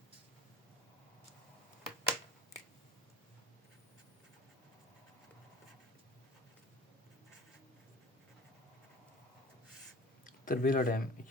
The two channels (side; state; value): both; normal; correlation 0.43